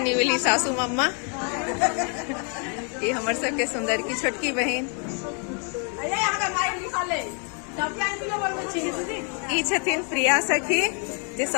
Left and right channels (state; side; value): quieter; right; 39.3 dB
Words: सासू मम्मा ये हमर सबके सुंदर की छोटकी बहन ई छथिन प्रिया सखी जे